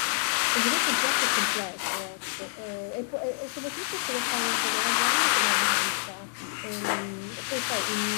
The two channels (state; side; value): silent; right; digital silence